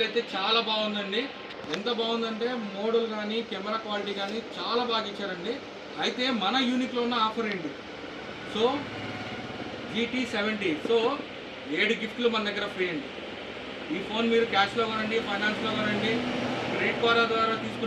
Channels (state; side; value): identical; both; correlation 1.00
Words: అయితే చాలా బాగుందండి. ఎంత బాగుందంటే మోడల్ కానీ కెమెరా క్వాలిటీ కానీ చాలా బాగా ఇచ్చారండి. అయితే మన యూనిక్లో ఉన్న ఆఫర్ ఏంటి? సో GT 70, సో 7 గిఫ్ట్లు మన దగ్గర ఫ్రీ అండి. ఈ ఫోన్ మీరు క్యాష్లో కొనండి, ఫైనాన్స్లో కొనండి, క్రెడిట్ కార్డ్ ద్వారా